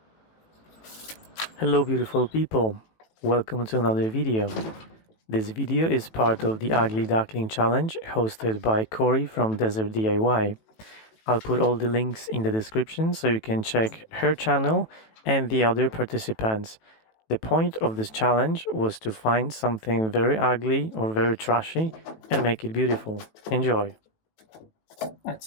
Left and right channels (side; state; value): right; late; 18 ms